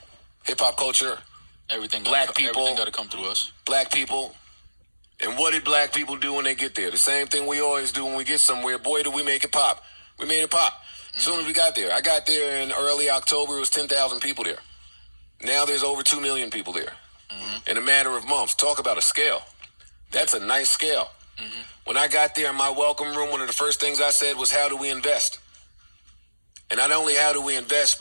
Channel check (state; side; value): inverted; both; correlation -1.00